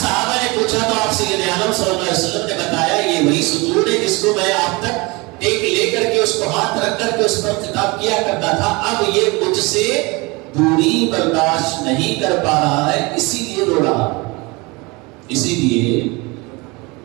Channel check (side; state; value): left; quieter; 25.6 dB